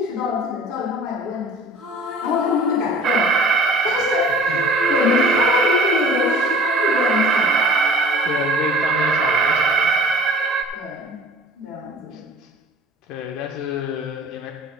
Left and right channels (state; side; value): normal; both; correlation 0.46